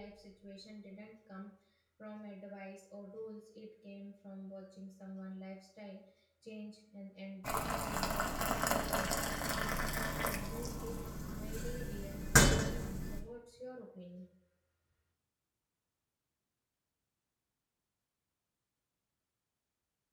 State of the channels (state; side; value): identical; both; correlation 1.00